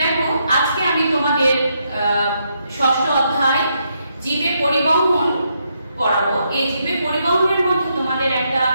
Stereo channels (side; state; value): both; inverted; correlation -0.78